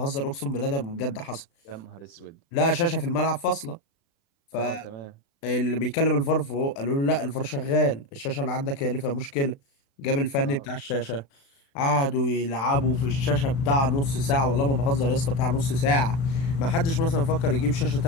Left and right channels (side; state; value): right; late; 36 ms